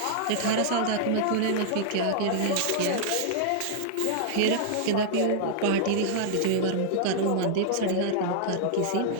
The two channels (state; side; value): different; both; correlation -0.01